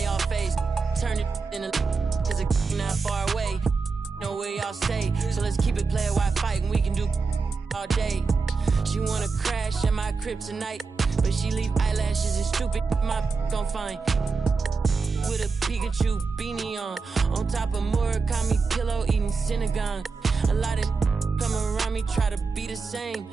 y'all face. Turn it in a cause it's not far away. Know where y'all stay, so let's keep it player while fighting. We can do all day. She wanna crash at my crib tonight, but she leave eyelashes and stupid my gon' find. With a Pikachu beanie on top of Murakami pillow eating Synagogue. A lot of come around me try to be the same,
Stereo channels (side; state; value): left; quieter; 4.6 dB